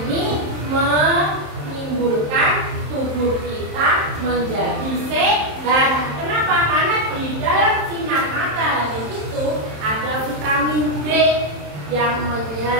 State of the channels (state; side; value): late; left; 27 ms